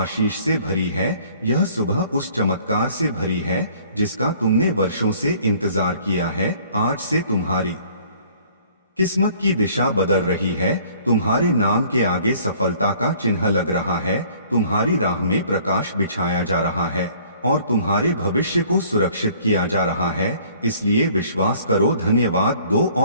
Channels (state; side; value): inverted; both; correlation -0.56